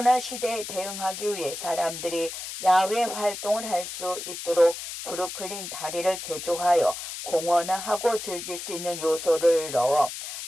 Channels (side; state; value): left; noise; hiss, 8 dB below the sound